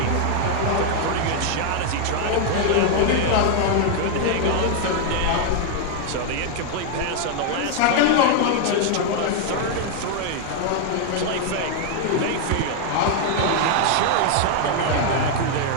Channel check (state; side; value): different; both; correlation 0.00